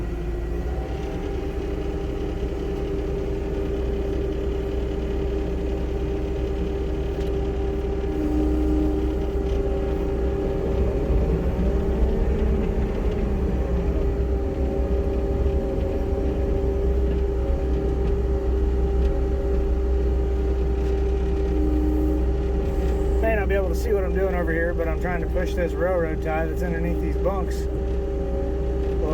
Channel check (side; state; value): both; identical; correlation 1.00